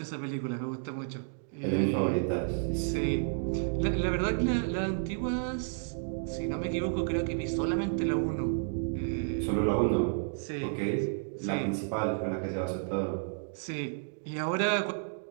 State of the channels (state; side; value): silent; left; digital silence